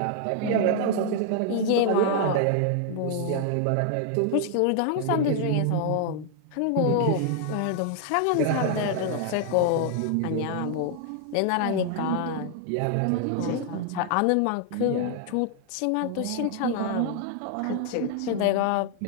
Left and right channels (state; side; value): different; both; correlation 0.00